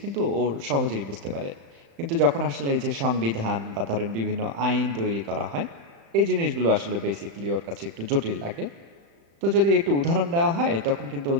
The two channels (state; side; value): late; left; 35 ms